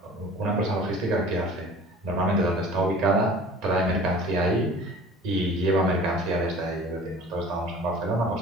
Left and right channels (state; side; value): normal; both; correlation 0.45